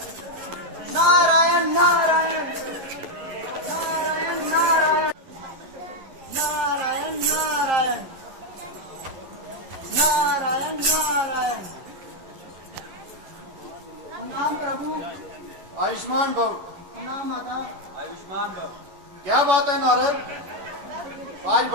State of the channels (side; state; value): left; late; 11 ms